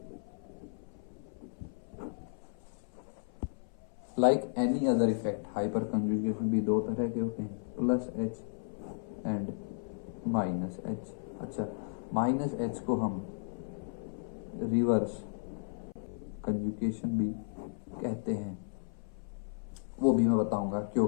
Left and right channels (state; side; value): silent; right; 55 dB below the other